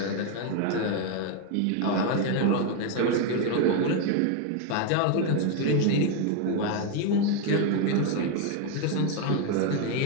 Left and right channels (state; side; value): different; both; correlation 0.01